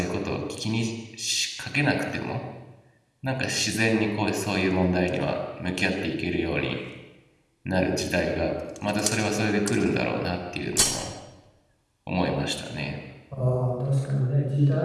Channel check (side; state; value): both; identical; correlation 1.00